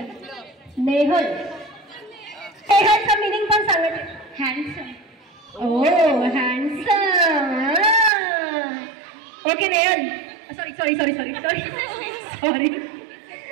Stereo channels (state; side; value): drops out; left; at 8.1 s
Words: नेहल. नेहलचं मिनिंग पण सांगत. हँडसम. ओ handsome. Okay Nehal, sorry sorry sorry sorry sorry sorry.